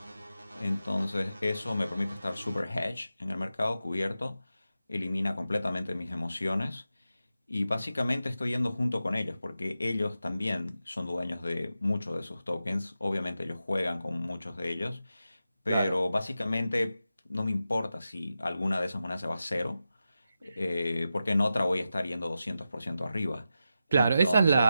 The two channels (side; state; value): both; inverted; correlation -0.91